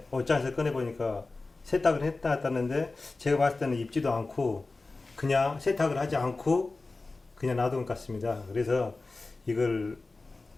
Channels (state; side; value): quieter; right; 3.5 dB